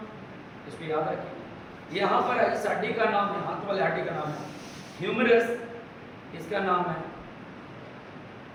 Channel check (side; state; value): both; identical; correlation 1.00